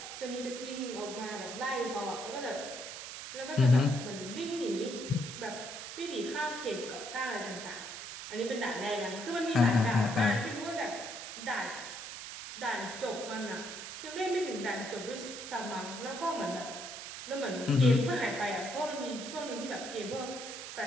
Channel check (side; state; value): right; noise; hiss, 9 dB below the sound